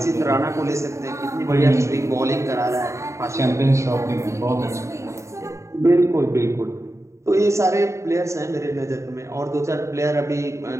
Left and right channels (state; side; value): late; left; 0.14 ms